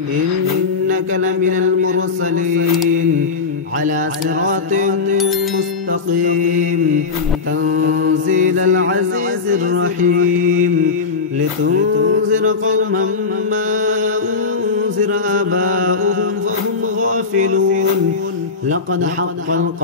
إنك لمن المرسلين على صراط مستقيم تنزيل العزيز الرحيم لتنذر قوما ما أنذر آباؤهم فهم غافلون لقد حق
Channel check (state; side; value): quieter; right; 4.7 dB